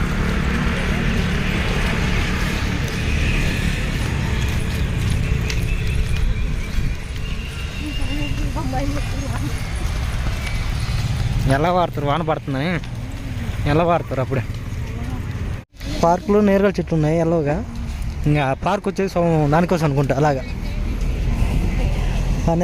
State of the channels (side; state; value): both; identical; correlation 1.00